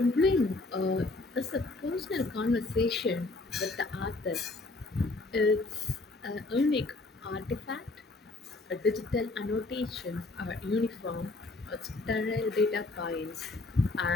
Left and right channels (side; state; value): right; quieter; 3.2 dB